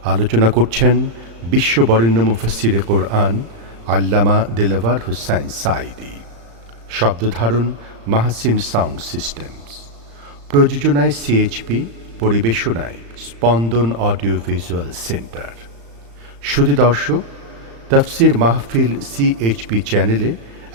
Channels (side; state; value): left; late; 35 ms